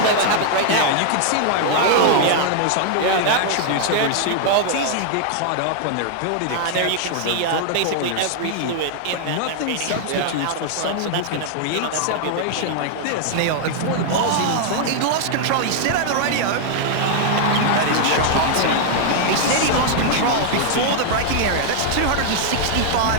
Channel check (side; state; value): both; different; correlation 0.00